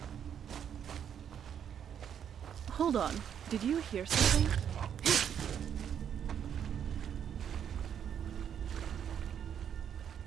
Hold on. Did you hear something?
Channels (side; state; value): left; quieter; 8.7 dB